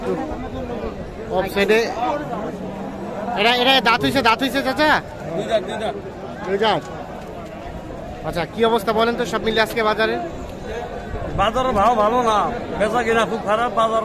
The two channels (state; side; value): identical; both; correlation 1.00